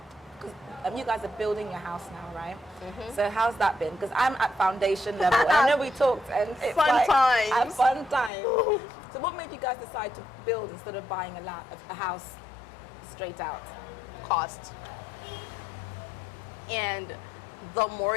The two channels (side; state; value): right; drops out; at 8.3 s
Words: 'Cause, you guys are building your house now, right? So how's that been? Because I'm at foundation level. And I know we talked. And it's Fun like, times. At fun time. So what made you guys decide to build instead of buying a house straight out? Cost. And the